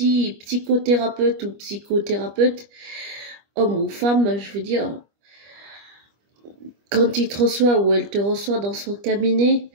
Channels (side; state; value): left; late; 25 ms